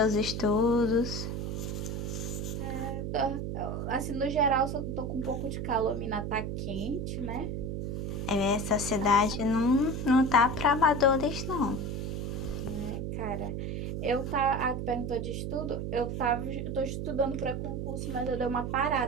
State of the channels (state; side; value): noise; right; hum, 3 dB below the sound